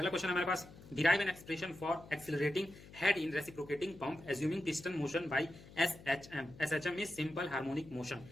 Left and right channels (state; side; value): noise; left; hum, 19 dB below the sound